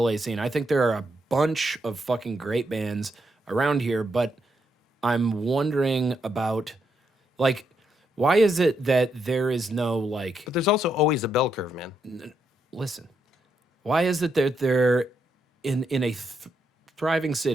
scene. I think there are a bunch of fucking great bands around here, but I'm wondering about like Why is it that there is no like? But there's also always a bell curve, man. Listen, why is it that they're in a thriving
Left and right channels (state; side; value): normal; both; correlation 0.79